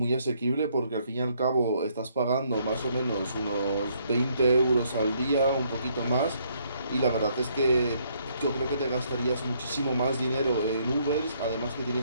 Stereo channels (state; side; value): inverted; both; correlation -0.69